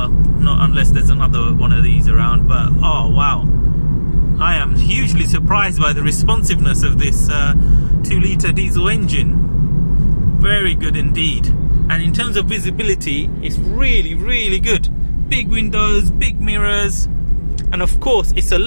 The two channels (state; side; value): inverted; both; correlation -1.00